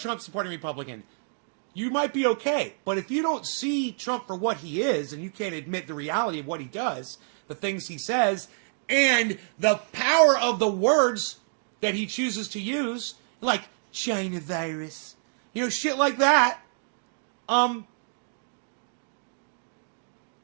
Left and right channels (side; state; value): left; silent; digital silence